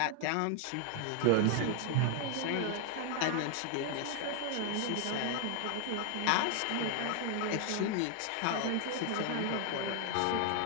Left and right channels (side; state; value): both; different; correlation 0.00